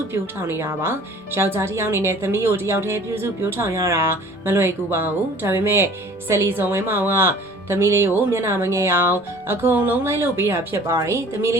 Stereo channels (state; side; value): normal; both; correlation 0.49